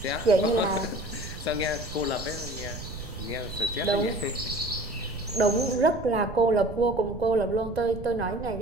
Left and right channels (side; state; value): right; noise; rumble, 11 dB below the sound